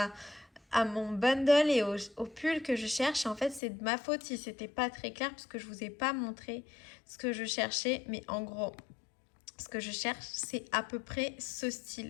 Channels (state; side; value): drops out; right; at 3.6 s